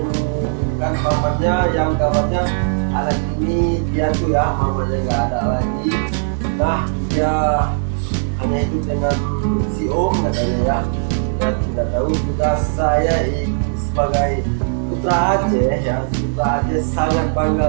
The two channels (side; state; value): left; silent; digital silence